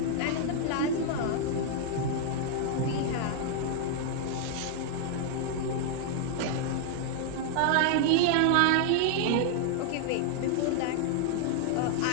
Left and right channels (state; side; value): different; both; correlation 0.00